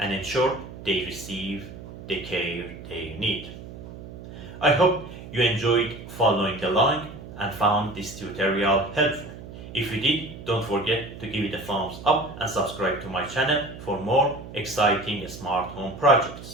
ensure they receive the care they need. I hope you enjoyed following along and found this tutorial helpful. If you did, don't forget to give it a thumbs up and subscribe to my channel for more exciting smart home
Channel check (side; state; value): right; noise; hum, 13 dB below the sound